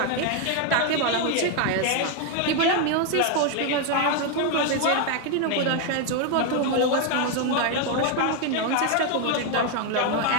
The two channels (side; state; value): both; different; correlation 0.01